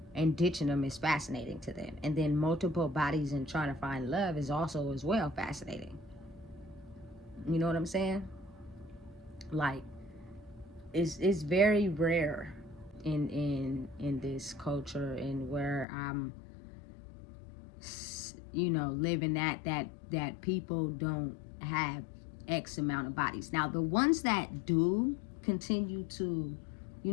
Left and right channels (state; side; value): drops out; right; at 15.9 s